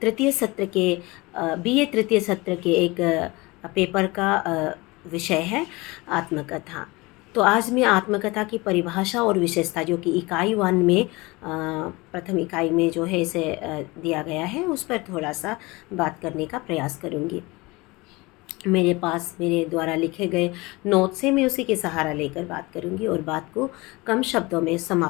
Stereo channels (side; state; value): right; quieter; 23.3 dB